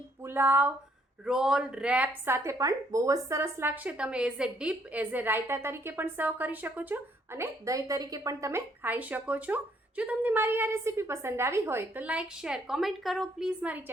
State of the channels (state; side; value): normal; both; correlation 0.68